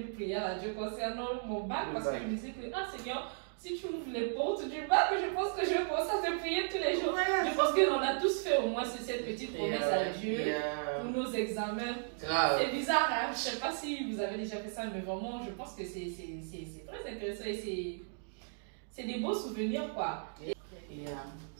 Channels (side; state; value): left; silent; digital silence